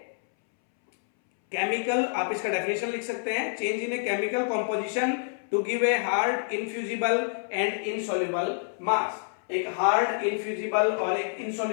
chemical, आप इसका डेफिनेशन लिख सकते हैं, change in a chemical composition to give a hard infusible and insoluble mass. एक हार्ड, इनफ्यूजिबल और एक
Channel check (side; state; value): right; silent; 60 dB below the other